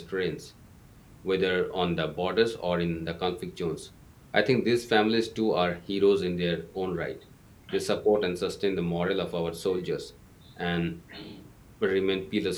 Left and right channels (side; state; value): both; identical; correlation 1.00